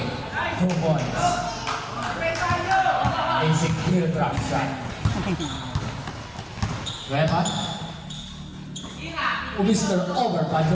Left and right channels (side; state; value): both; identical; correlation 1.00